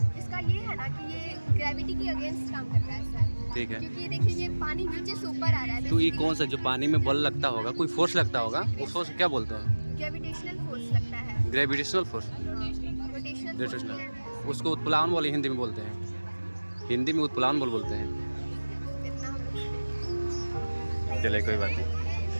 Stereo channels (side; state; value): both; inverted; correlation -1.00